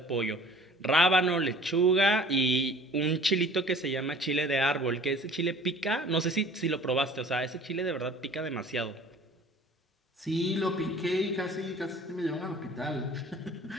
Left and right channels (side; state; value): both; normal; correlation 0.48